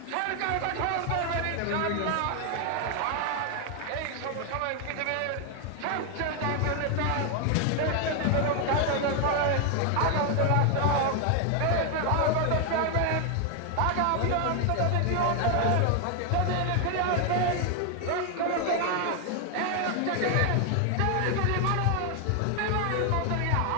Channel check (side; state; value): both; different; correlation 0.00